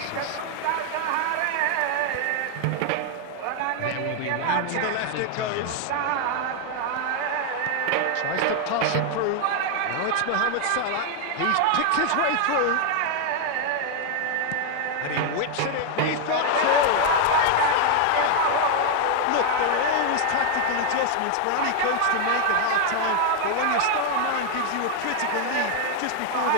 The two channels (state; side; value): different; both; correlation 0.00